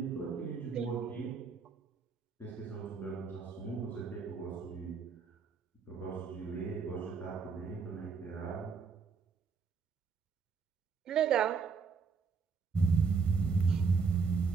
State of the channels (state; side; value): quieter; left; 5.3 dB